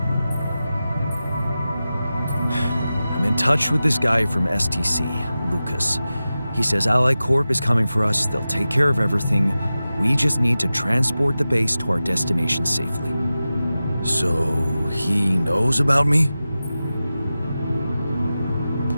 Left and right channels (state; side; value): inverted; both; correlation -0.94